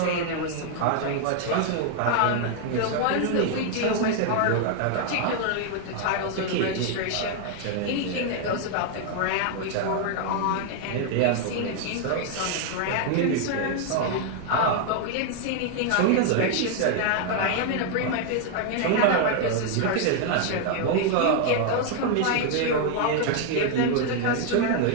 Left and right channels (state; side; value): different; both; correlation 0.00